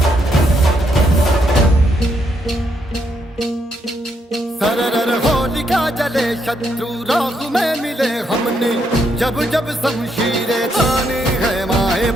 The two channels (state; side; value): normal; both; correlation 0.76